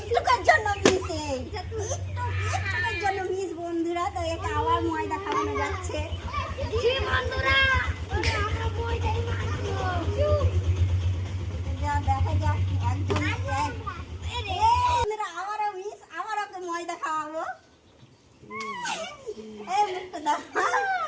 জন্য মিস, একটুকের জন্য মিস বন্ধুরা। তো এটা আবার ময়দা খাওয়ানো যাচ্ছে। দেখা যাক একজন আবারও মিস, আবার ওকে ময়দা খাওয়াবো।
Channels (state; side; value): identical; both; correlation 1.00